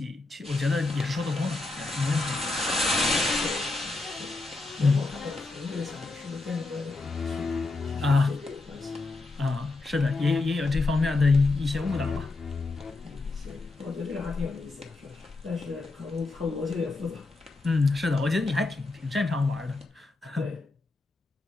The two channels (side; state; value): right; quieter; 3.4 dB